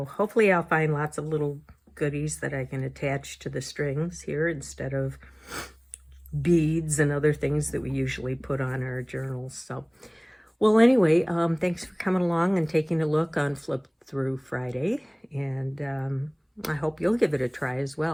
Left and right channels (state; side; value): identical; both; correlation 1.00